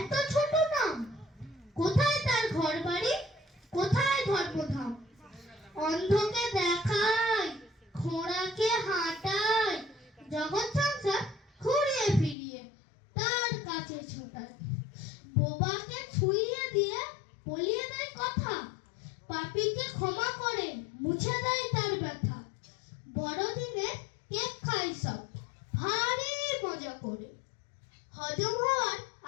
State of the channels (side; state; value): right; drops out; at 12.4 s